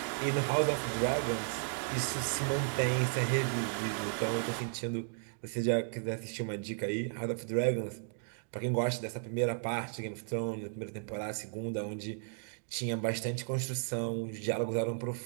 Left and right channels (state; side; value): silent; left; digital silence